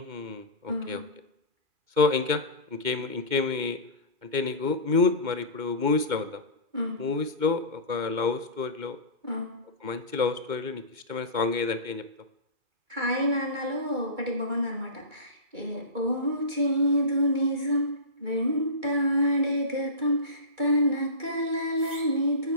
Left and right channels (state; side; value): late; left; 2.2 ms